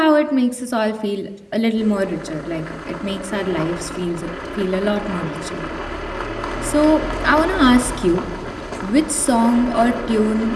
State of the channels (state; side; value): identical; both; correlation 1.00